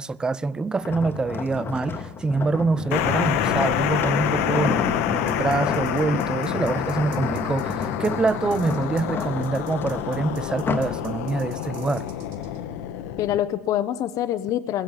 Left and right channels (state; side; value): normal; both; correlation 0.59